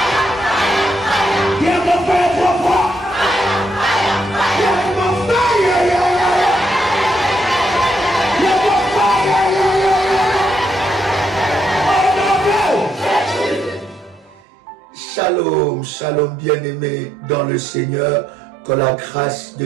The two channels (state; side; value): drops out; left; at 14.4 s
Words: Shalom, shalom bien-aimés dans le Seigneur, que la grâce